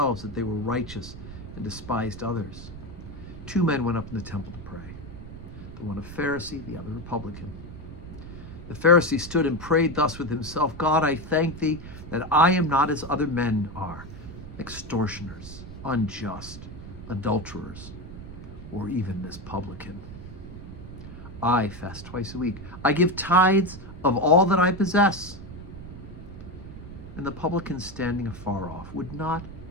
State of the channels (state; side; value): noise; right; rumble, 13 dB below the sound